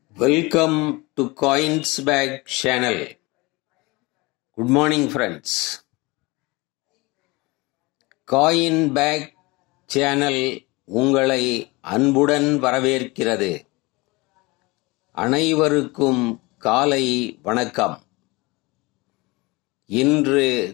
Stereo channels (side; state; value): right; quieter; 24.0 dB